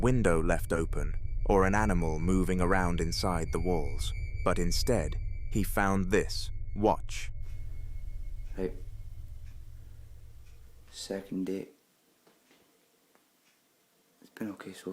left open, or an animal moving around inside the walls. But instead, he found this. Watch. Right. Second date. It's been okay so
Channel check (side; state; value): both; identical; correlation 1.00